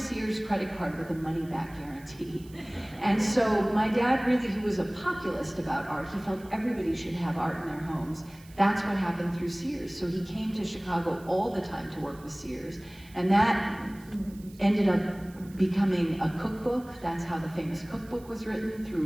credit card with a money-back guarantee. And so my dad really, who was a populist about art, he felt everybody should have art in their homes. That's what happened through Sears. So he came to Chicago all the time to work with Sears. And that ended up becoming a cookbook. That's how the famous cookbook was written,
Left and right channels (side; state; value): right; noise; hiss, 25 dB below the sound